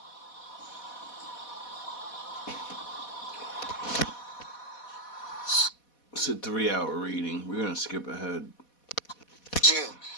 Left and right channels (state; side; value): late; right; 4.1 ms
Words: It's a 3-hour reading. We're going to skip ahead.